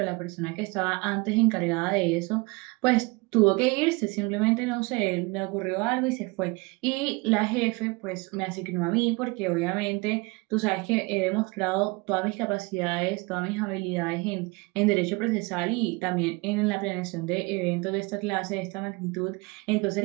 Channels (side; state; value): left; quieter; 26.4 dB